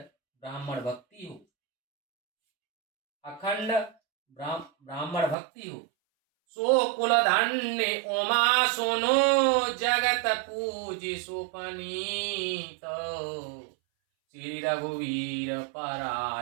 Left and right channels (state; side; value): drops out; left; at 5.4 s